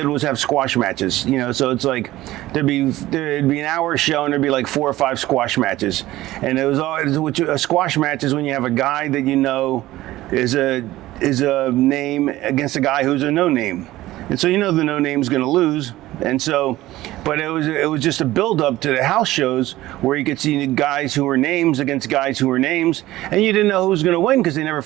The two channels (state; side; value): quieter; left; 16.4 dB